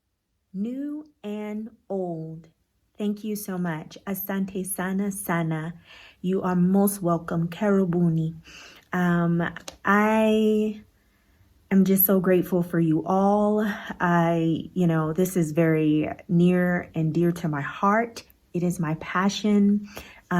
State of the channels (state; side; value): identical; both; correlation 1.00